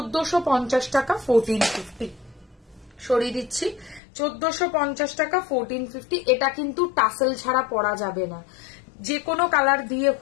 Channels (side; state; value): right; drops out; at 4.0 s